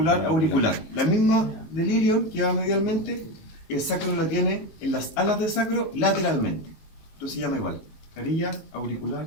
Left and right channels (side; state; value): right; late; 19 ms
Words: auricular. La misma del ilion que va medialmente, el sacro la tiene en las alas del sacro lateralmente. Esto se llama igual. Carilla auricular